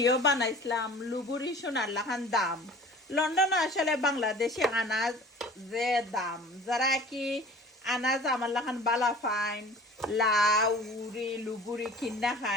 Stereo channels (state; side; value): normal; both; correlation 0.44